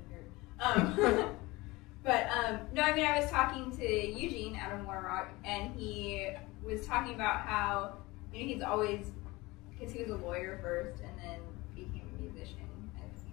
nerd. But no, I mean, I was talking to Eugene out of Warrock, and he was talking about how, you know, he's always, because he was a lawyer first and then became a musician.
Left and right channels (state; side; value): quieter; right; 21.7 dB